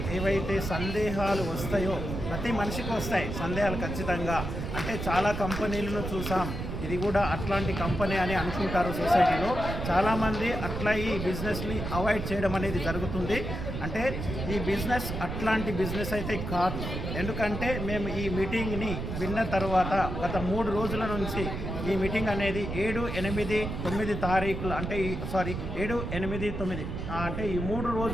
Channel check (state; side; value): noise; right; rumble, 5 dB below the sound